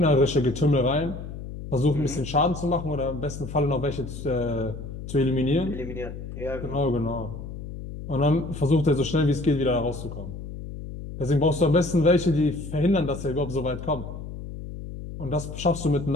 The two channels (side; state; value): left; noise; hum, 10 dB below the sound